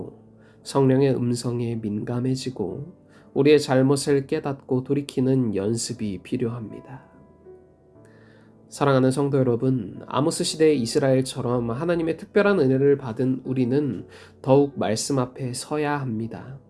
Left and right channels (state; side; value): identical; both; correlation 1.00